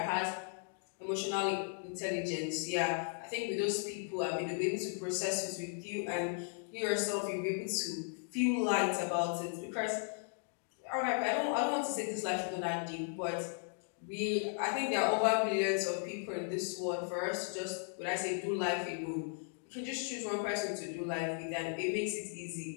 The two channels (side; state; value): right; silent; 54 dB below the other